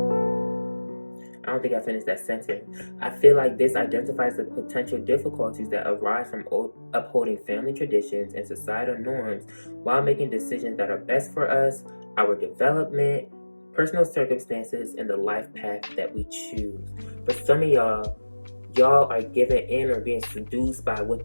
I don't think I finished that sentence. I feel like this identifies the potential difficulties that arise from upholding family traditions and societal norms while making decisions that are best for us, our development, personal circumstances, and the life path that we choose. For some of y'all are given in or being seduced by what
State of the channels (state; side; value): inverted; both; correlation -1.00